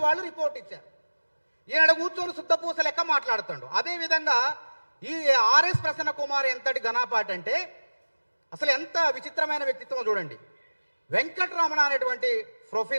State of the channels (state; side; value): inverted; both; correlation -1.00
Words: వాళ్ళు రిపోర్ట్ ఇచ్చారు. ఈయన కూర్చొని శుద్ధపూస లెక్క మాట్లాడుతాడు. అదేవిధంగా ఈ ఆర్ఎస్ ప్రసన్న కుమార్ ఎంతటి ఘనాపాటి అంటే అసలు ఎంత విచిత్రమైన వ్యక్తిత్వం చూడండి. వెంకటరమణ అనేటువంటి